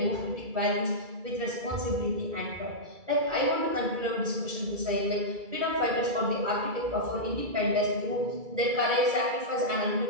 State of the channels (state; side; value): late; left; 2.3 ms